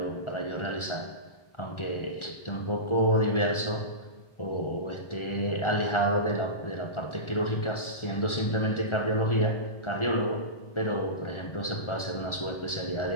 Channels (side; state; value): right; late; 1.4 ms